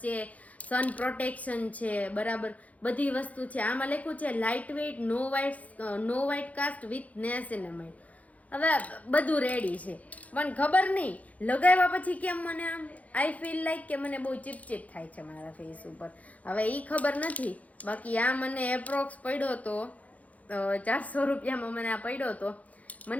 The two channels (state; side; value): late; right; 0.071 ms